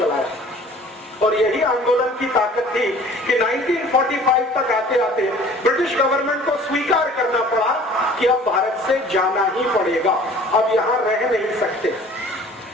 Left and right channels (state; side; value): normal; both; correlation 0.49